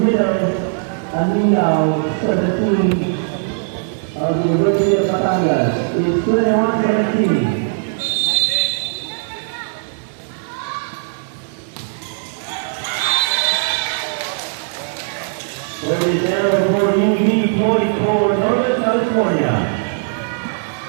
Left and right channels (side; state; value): left; silent; digital silence